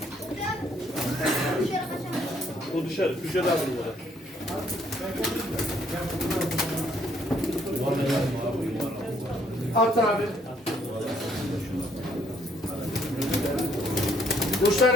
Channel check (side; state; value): both; normal; correlation 0.67